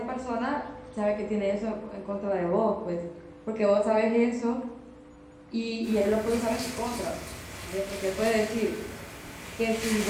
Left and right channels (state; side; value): identical; both; correlation 1.00